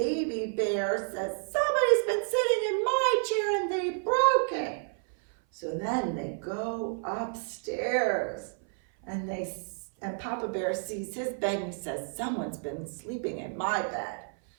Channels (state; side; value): silent; left; 56 dB below the other